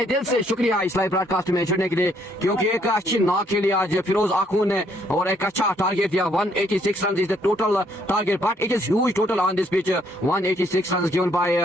दिल से शुक्रिया इस लाइव ब्रॉडकास्ट में जुड़ने के लिए क्योंकि एक अच्छी नॉक खेली आज फिरोज आखून ने और एक अच्छा टारगेट दिया 186 run is the total target but it is huge total on this pitch 186 run given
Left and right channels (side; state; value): both; normal; correlation 0.68